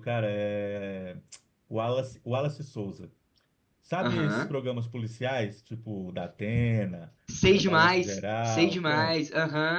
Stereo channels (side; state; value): both; identical; correlation 1.00